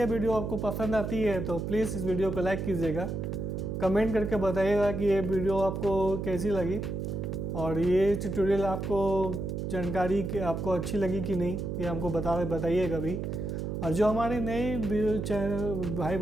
वीडियो आपको पसंद आती है तो प्लीज़ इस वीडियो को लाइक कीजिएगा, कमेंट करके बताइएगा कि ये वीडियो आपको कैसी लगी और ये ट्यूटोरियल आपको जानकारी आपको अच्छी लगी कि नहीं, ये हमको बताइएगा भी। और जो हमारे नए भाई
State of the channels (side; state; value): right; noise; hum, 3 dB below the sound